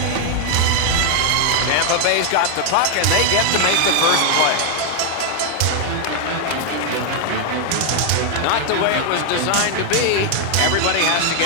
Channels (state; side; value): different; both; correlation 0.00